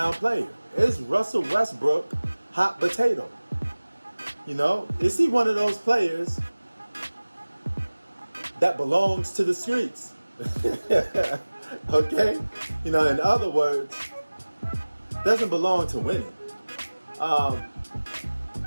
player? Is Russell Westbrook hot potato? You know, is he one of those players that belongs to the streets? Okay? You know, in other words, doesn't belong to winning.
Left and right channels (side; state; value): both; inverted; correlation -1.00